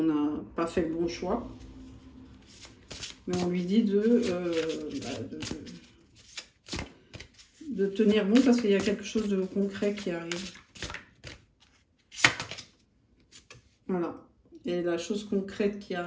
n'a pas fait le bon choix. Mais on lui dit de tenir bon parce qu'il y a quelque chose de concret qui arrive. Voilà. Et la chose concrète qui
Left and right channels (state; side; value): identical; both; correlation 1.00